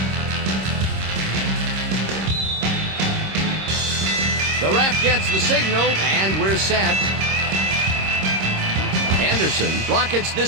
The ref gets the signal, and we're set. Anderson rockets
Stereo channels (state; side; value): late; left; 26 ms